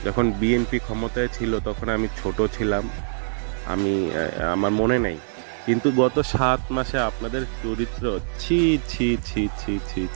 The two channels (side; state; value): left; silent; digital silence